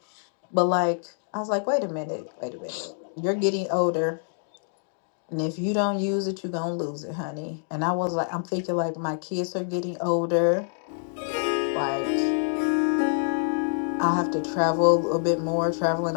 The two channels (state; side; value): silent; right; digital silence